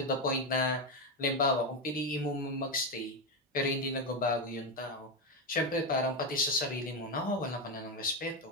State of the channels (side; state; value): both; normal; correlation 0.09